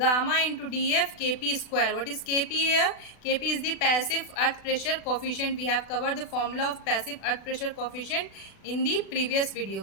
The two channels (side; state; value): right; late; 36 ms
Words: into dF Kp square. What is Kp here? Kp is the passive earth pressure coefficient. We have covered the formula of passive earth pressure coefficient in the previous